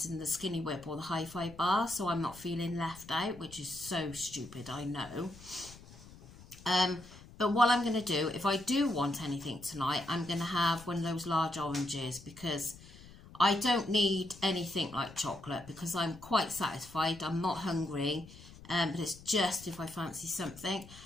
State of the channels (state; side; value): noise; left; rumble, 19 dB below the sound